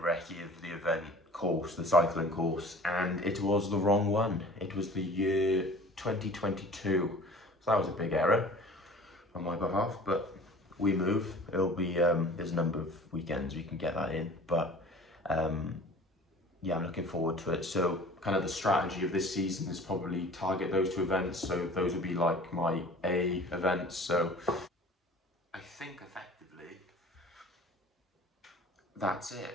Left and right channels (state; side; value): normal; both; correlation 0.45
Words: of the event course, the cycling course, and it was the wrong one. It was the year 2022. So that was a big error on my behalf, but we move. It'll be, there's a number of weekends we can get that in, but yeah, I'm looking forward to it. So kind of the strategy of this season is probably target those two events. So those would be like my A events. So I think effectively that's